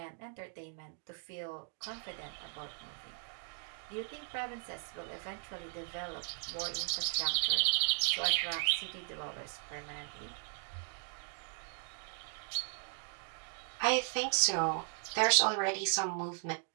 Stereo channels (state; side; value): silent; left; 53 dB below the other